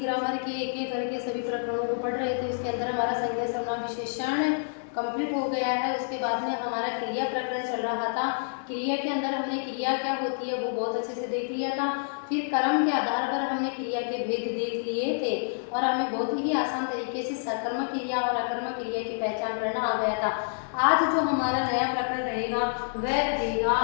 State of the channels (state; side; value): silent; right; 59 dB below the other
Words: ग्रामर के एक एक करके सभी प्रकरणों को पढ़ रहे थे। इसके अंदर हमारा संज्ञा सर्वनाम विशेषण कंप्लीट हो गया है। उसके बाद में हमारा क्रिया प्रकरण चल रहा था। क्रिया के अंदर हमने क्रिया क्या होती है वो बहुत अच्छे से देख लिया था। फिर कर्म के आधार पर हमने क्रिया के भेद देख लिए थे और हमें बहुत ही आसान तरीके से सकर्मक क्रिया और अकर्मक क्रिया की पहचान करना आ गया था। आज जो हमारा नया प्रकरण रहेगा वह रहेगा